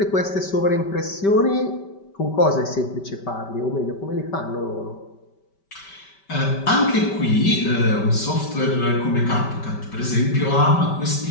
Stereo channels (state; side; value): late; right; 5.2 ms